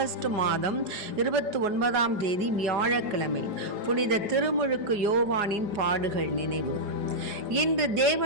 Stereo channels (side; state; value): left; late; 4.9 ms